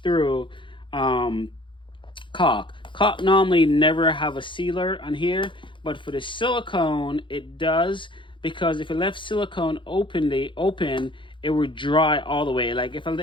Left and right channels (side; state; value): right; late; 0.24 ms